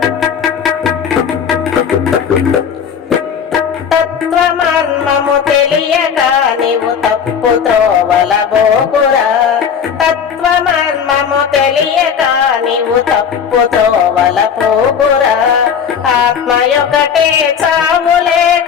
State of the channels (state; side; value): quieter; right; 7.3 dB